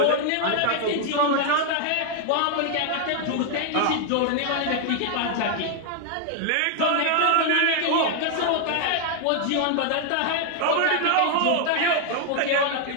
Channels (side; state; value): both; different; correlation 0.00